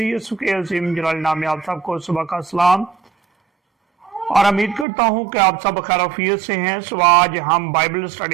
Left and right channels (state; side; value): drops out; left; at 4.9 s